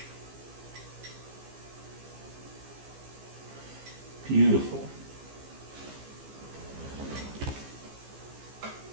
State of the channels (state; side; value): late; left; 15 ms